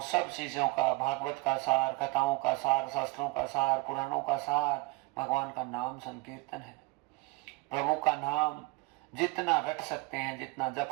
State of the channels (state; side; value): quieter; left; 24.0 dB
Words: सब चीजों का, भागवत का सार, कथाओं का सार, शास्त्रों का सार, पुराणों का सार भगवान का नाम संकीर्तन है। प्रभु का नाम जितना रट सकते हैं, जितना जप